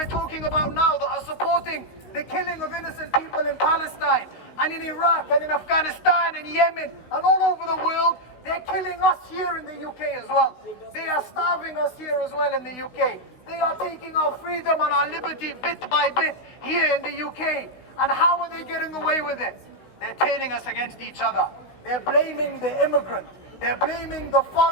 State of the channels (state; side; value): late; right; 16 ms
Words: talking about now, that are supporting the killing of innocent people in Palestine and in Iraq and in Afghanistan and Yemen and all over the world, they're killing us here in the UK as well. They are starving us here as well in the UK. They are taking our freedom and our liberty bit by bit here in the UK. And how are they getting away with it? They're turning us against each other. They're blaming the immigrant. They're blaming the